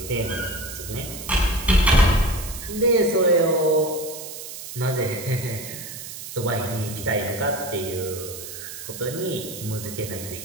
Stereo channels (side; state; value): right; noise; hiss, 10 dB below the sound